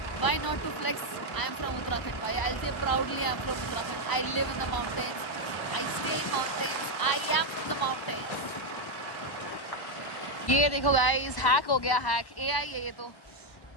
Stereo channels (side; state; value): right; late; 1.1 ms